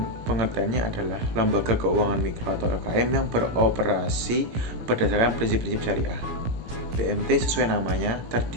pengertiannya adalah lembaga keuangan mikro atau LKM yang beroperasi berdasarkan prinsip-prinsip syariah. BMT sesuai namanya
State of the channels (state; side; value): late; left; 17 ms